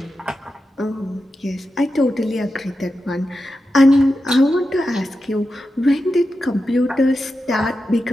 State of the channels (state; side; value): normal; both; correlation 0.90